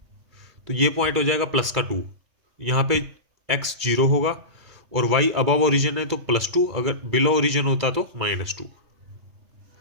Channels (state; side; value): late; left; 2.3 ms